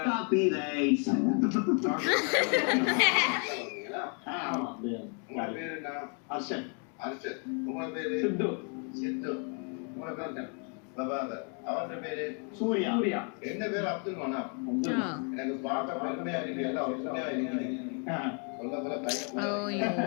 காப்பி ரைட்ஸ் உங்க பேரு என்ன அர்ஷன் உங்க பேரு சித்து சித்து உங்க பேரு பிரபாகர் அவன் பேரு சூர்யா என்ன பேரு அப்துல் மனாப் எனக்கு பார்க்க பெருமையா இருக்கு எல்லாம் ஒற்றுமையா இருக்கு சொல்ல போல ஐயோ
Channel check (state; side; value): quieter; right; 38.6 dB